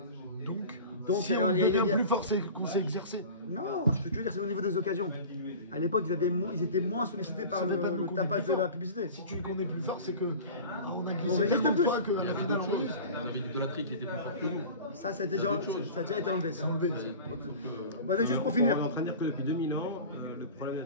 Donc, si on est bien plus fort, c'est qu'on s'est exercé. Non, ce que tu veux dire, c'est au niveau des occasions. À l'époque, ils étaient moins sollicités par le tapage de la publicité. Si tu dis qu'on est plus fort, c'est que on a On glissé résiste tellement de plus. fois qu'à la finale, on réussit. Il y avait une idolâtrie qui était plus forte que nous. Ça a déjà été enlevé. Ça. Enlevé. Bon, juste pour finir. On est en train de dire que depuis 2000 ans, le problème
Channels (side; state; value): both; inverted; correlation -0.37